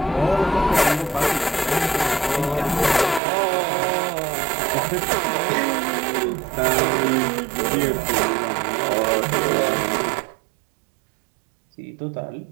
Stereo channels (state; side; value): drops out; left; at 3.2 s